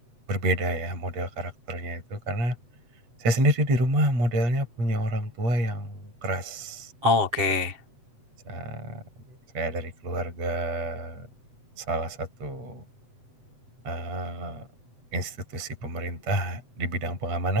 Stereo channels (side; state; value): left; late; 7.9 ms